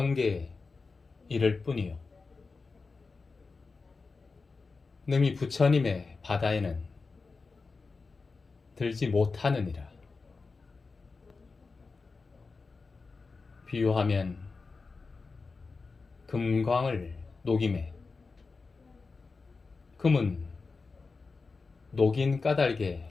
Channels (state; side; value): quieter; right; 4.3 dB